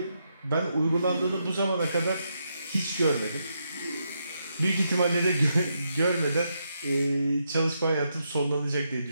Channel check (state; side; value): inverted; both; correlation -0.81